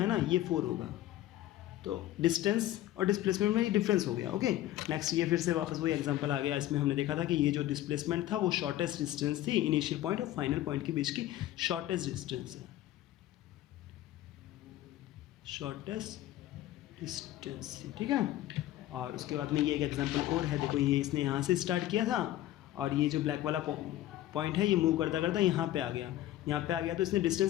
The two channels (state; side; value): quieter; right; 14.1 dB